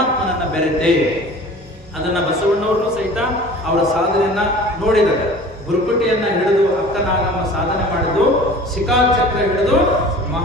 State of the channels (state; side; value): normal; both; correlation 0.43